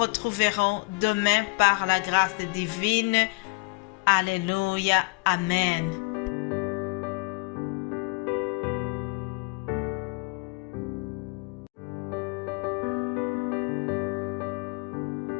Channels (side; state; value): right; quieter; 30.2 dB